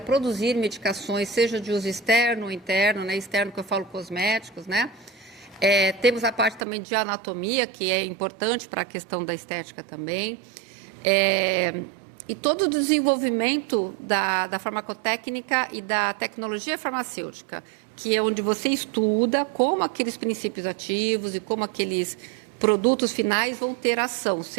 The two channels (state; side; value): drops out; left; at 6.7 s